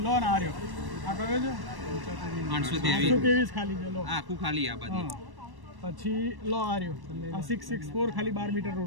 લો ને આ રહ્યો, આ કયો છે 823 ખાલી છે. લો આખું ખાલી આ બાજુ. પછી લો આ રહ્યો આ 664 ખાલી 12 મીટર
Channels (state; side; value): late; left; 1.1 ms